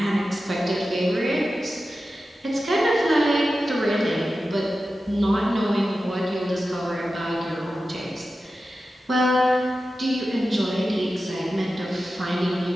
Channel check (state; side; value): normal; both; correlation 0.93